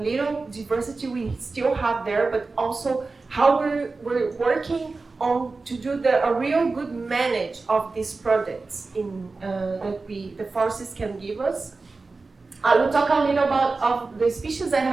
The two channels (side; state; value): left; quieter; 3.8 dB